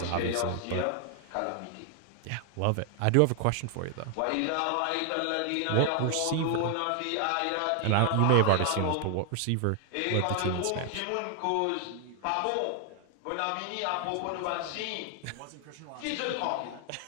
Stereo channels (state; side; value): different; both; correlation 0.00